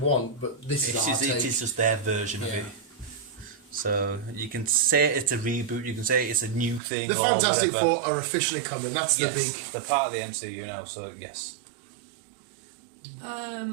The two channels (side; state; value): left; drops out; at 6.8 s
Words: but this is our take. It is just their version of it. So you can say it's a reboot, you can say it's a new thing. The Fantastic Four are officially coming. That's the big. They're part of the MCU now, so yes.